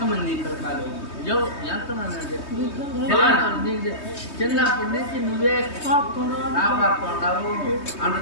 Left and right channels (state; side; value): late; right; 3.2 ms